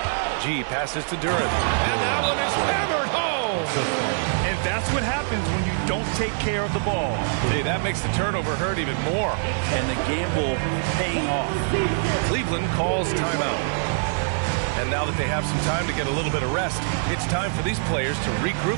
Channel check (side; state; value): left; silent; digital silence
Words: G passes to Duran. And that one is hammered home. And that's what happens when you don't take care of the ball. Hey, that makes the turnover hurt even more. And the gamble paying off. Cleveland calls timeout. And now that they have some time to get a little bit of rest, it's time for these players to